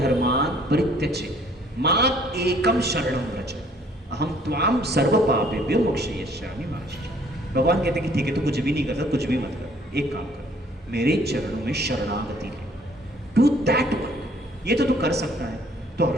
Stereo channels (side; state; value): both; normal; correlation 0.60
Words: परित्यज्य मां एकम शरणं व्रज अहम त्वाम सर्व पापेभ्यो मोक्षयिष्यामि मा शुचः। भगवान कहते हैं कि ठीक है, तो कुछ भी नहीं करता, कुछ भी मत कर, एक काम कर, मेरे चरणों में शरणागति ले, डू दैट वर्क, ये तो तू कर सकता है। तो